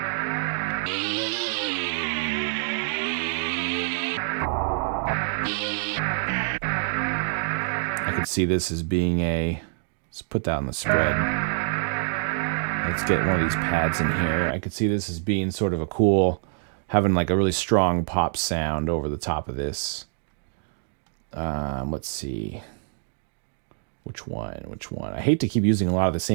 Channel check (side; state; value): left; silent; digital silence